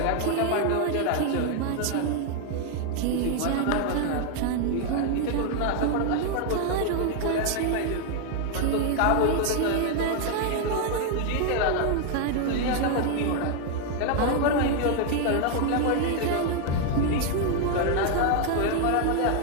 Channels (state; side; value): different; both; correlation 0.00